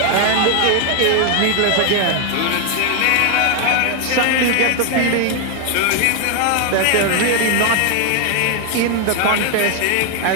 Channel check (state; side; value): different; both; correlation 0.00